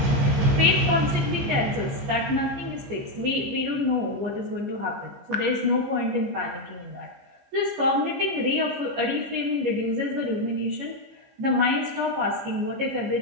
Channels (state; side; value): late; left; 14 ms